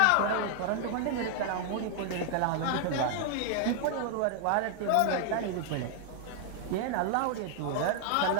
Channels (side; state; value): both; different; correlation 0.00